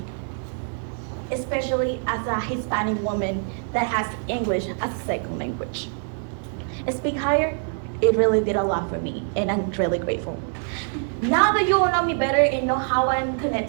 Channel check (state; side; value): silent; left; 58 dB below the other